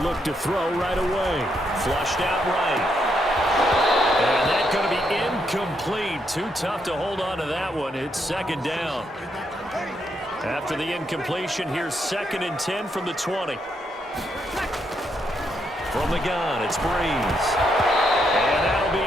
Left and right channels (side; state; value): both; normal; correlation 0.78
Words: look to throw right away. Flushed out right. And that's going to be incomplete. Too tough to hold on to that one. It's 2nd down. After the incompletion, here's 2nd and 10 from the 20. From the gun, it's Brees. And that'll be